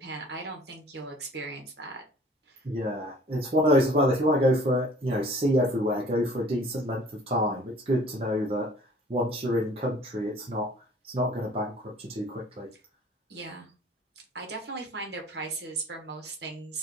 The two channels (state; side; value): normal; both; correlation 0.51